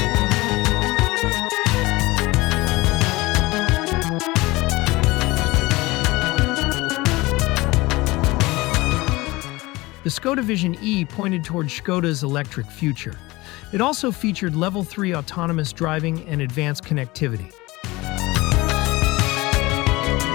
The Škoda Vision E pointed toward Škoda's electric future. It also featured Level 3 autonomous driving and advanced connectivity.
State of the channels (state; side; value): quieter; right; 21.3 dB